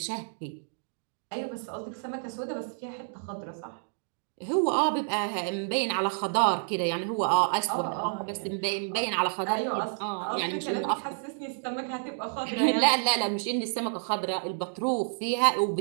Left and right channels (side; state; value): left; silent; digital silence